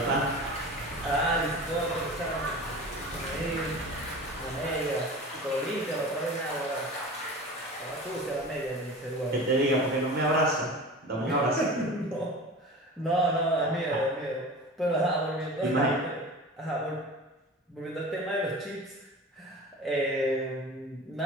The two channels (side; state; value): both; normal; correlation 0.35